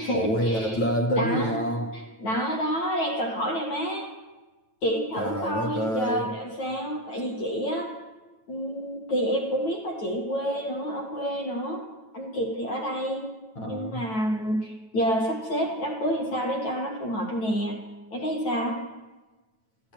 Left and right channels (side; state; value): right; late; 9.1 ms